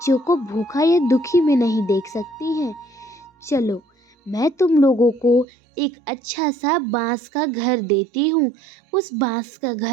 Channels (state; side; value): drops out; left; at 5.5 s